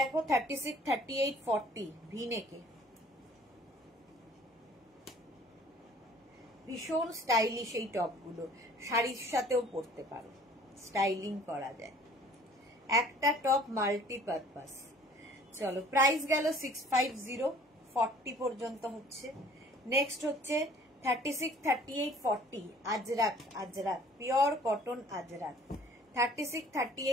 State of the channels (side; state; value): both; normal; correlation 0.53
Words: 36, 38, 40 ভি নেকে, ভীষণ স্টাইলিশ এই টপগুলো, শাড়ির সাথেও পরতে পারো, স্টাইলিং করা যায়, একটা টপ মাল্টিপারপাস। চলো প্রাইস গেল 650, 40 পর্যন্ত হচ্ছে। নেক্সট হচ্ছে 36, 38, 40 আজরাক, আজরাক পিওর কটন আজরাক, 36,